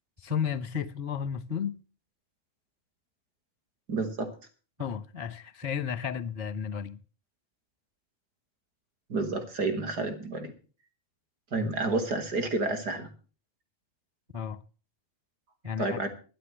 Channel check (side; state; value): left; late; 4.8 ms